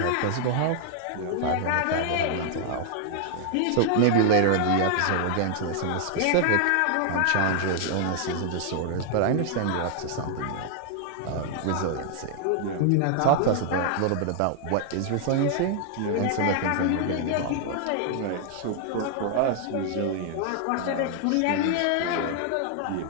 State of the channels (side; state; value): both; different; correlation 0.00